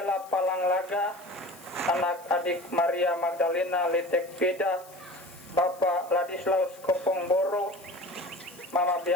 Palanglaga, anak adik Maria Magdalena Letek Peda, Bapak Ladislaus Kopong Boro, Mama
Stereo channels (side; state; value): left; noise; hiss, 23 dB below the sound